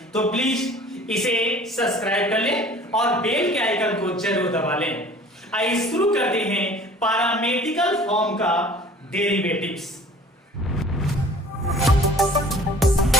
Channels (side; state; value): both; normal; correlation 0.48